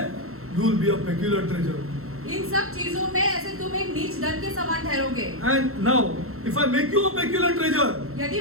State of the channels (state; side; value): late; left; 0.63 ms